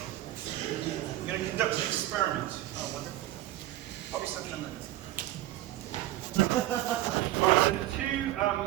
I'm going to conduct an experiment. Oh, wonderful. Pop yourself down there. Alright, so the two,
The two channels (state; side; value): quieter; left; 15.3 dB